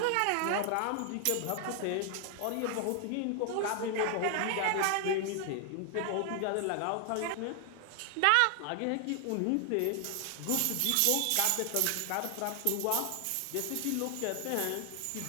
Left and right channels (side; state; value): both; different; correlation 0.00